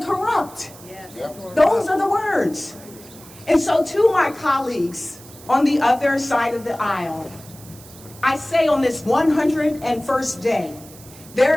corrupt. Yes. Those are the words. And so to my colleagues on the other side of the aisle, I say on this 101st day,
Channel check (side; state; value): right; noise; hiss, 20 dB below the sound